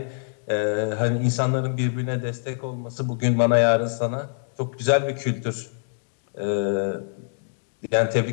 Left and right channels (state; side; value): silent; right; 62 dB below the other